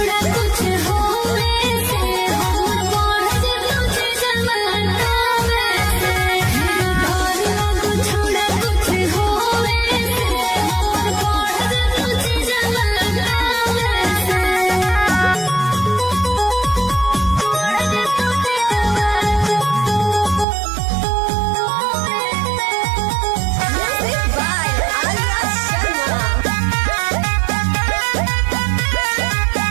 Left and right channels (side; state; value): left; drops out; at 20.5 s